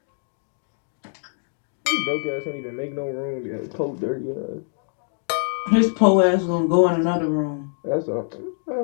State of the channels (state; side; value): silent; right; digital silence